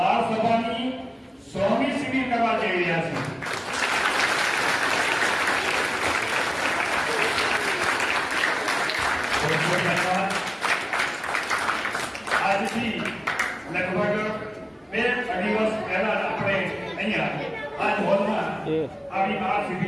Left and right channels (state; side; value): identical; both; correlation 1.00